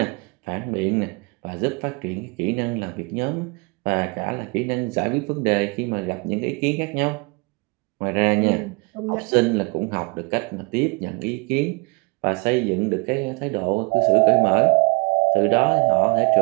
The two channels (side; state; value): left; quieter; 30.3 dB